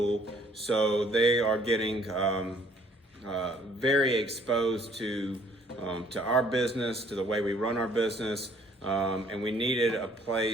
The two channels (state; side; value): normal; both; correlation 0.60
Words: so they are getting very exposed to our business, to the way we run our business, and we needed a